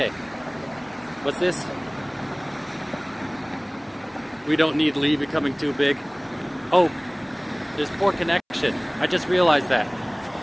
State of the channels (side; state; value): both; identical; correlation 1.00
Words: what's this? We don't need Lee becoming too big. Oh, there's poor connection. I just realized that.